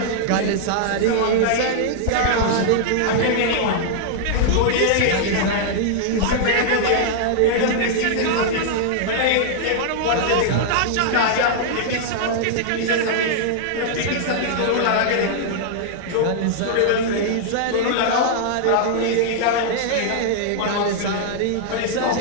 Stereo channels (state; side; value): different; both; correlation -0.01